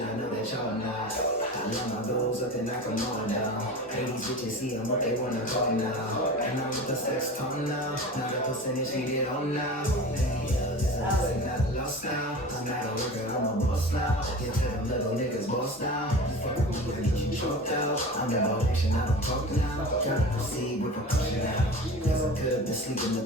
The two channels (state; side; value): normal; both; correlation 0.34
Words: I know that y'all not. I love my goals up and knock them all down. Hey, these bitches see them what they wanna call now. And I'm with the sex tone now. Now the percentage needed on now. I'm not lost now. I'm not a worker, I'm a boss now. Get to them little niggas boss now. Fuck with me, I get you choked out. I'm about action, I don't talk now. Gotta proceed with precaution now. Cause I could be sleeping